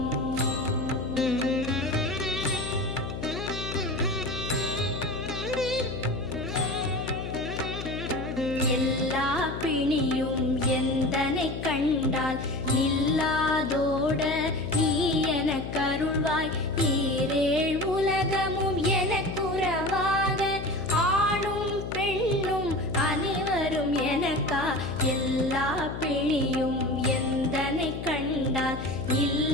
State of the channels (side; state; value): left; noise; hum, 7 dB below the sound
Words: எல்லா பிணியும் எந்தனை கண்டால் நில்லாதோட நீ எனக் கருள்வாய் ஈரேழ் உலகமும் எனக்குறவாக ஆணும் பெண்ணும் அனைவரும் எனக்கா எல்லா பிணியும் எந்தனை கண்டால்